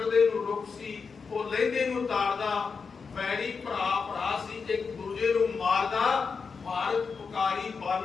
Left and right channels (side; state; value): right; quieter; 5.3 dB